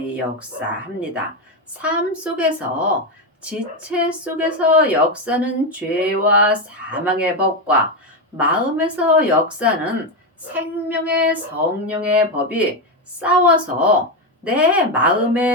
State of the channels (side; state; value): both; normal; correlation 0.09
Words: 역사합니다. 삶 속에서 지체 속에서 역사는 죄와 사망의 법과 마음에서 역사는 생명의 성령의 법이 싸워서 내